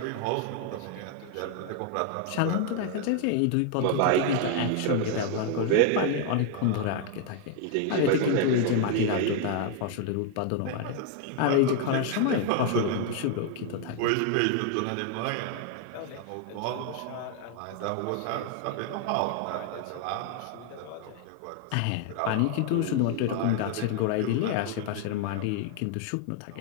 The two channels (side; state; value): both; different; correlation 0.00